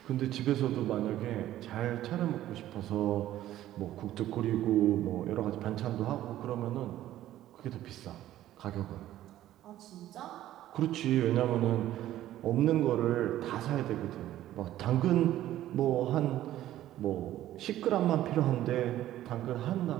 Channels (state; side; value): quieter; left; 13.5 dB